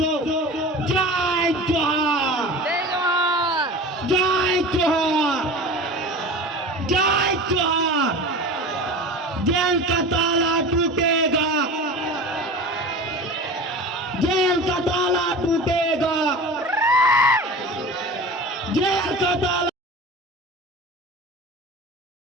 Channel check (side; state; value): both; normal; correlation 0.34